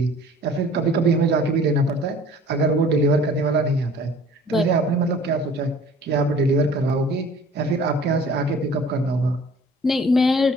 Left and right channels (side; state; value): both; normal; correlation 0.50